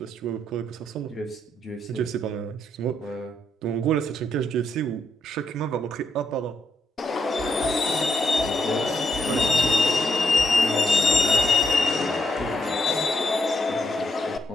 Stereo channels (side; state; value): both; normal; correlation 0.78